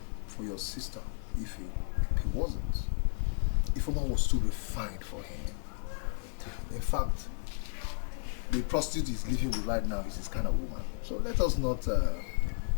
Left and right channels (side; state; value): right; silent; digital silence